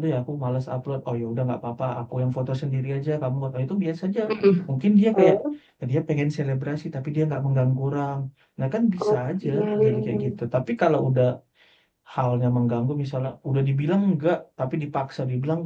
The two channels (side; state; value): both; identical; correlation 1.00